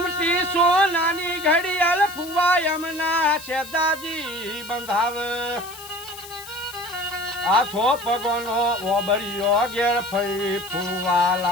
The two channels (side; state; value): left; noise; hiss, 15 dB below the sound